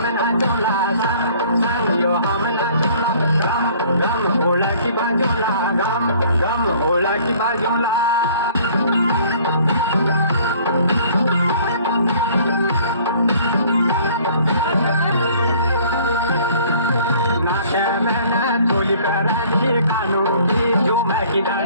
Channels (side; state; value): both; inverted; correlation -0.54